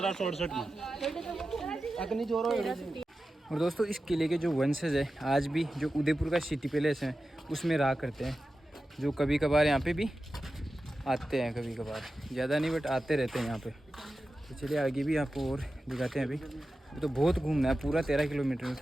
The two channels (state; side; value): normal; both; correlation 0.93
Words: में अग्नि जोरो। और दोस्तों इस किले के जो वंशज है आज भी जो उदयपुर का सिटी पैलेस है उसमें रहा करते हैं, जो कभी कभार यहाँ पे भी आते हैं, कभी कभार ज़्यादा नहीं बट आते रहते हैं यहाँ पे। तो चलिए आगे भी आपको और दिखाते हैं। अभी तो बहुत घूमना है, पूरा 13 किलोमीटर में